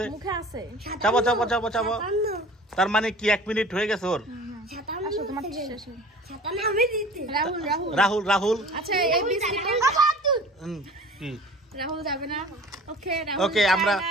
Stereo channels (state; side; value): normal; both; correlation 0.44